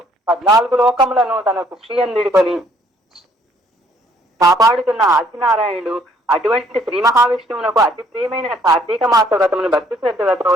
14 లోకములను తన కుక్షియందుడికొని కాపాడుతున్న ఆదినారాయణుడు. అటువంటి శ్రీ మహావిష్ణువునకు అతి ప్రియమైన కార్తీక మాస వ్రతమును భక్తి శ్రద్ధలతో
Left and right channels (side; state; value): both; normal; correlation 0.64